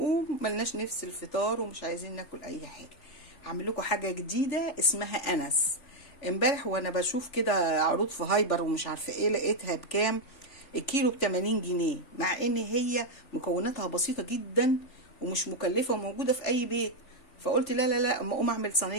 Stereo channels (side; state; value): right; late; 3.4 ms